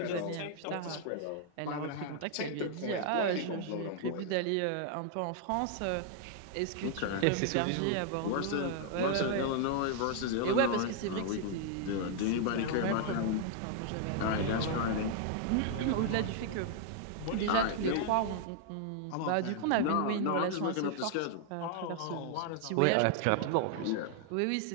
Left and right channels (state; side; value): different; both; correlation -0.01